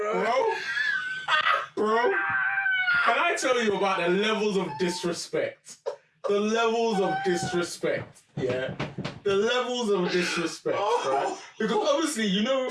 Bro, can I tell you about the levels of disrespect? The levels of disrespect, yeah? The levels of disrespect, right? Because obviously, you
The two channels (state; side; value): identical; both; correlation 1.00